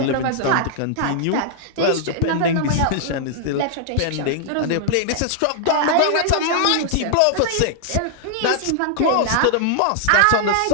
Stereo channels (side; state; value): both; different; correlation -0.01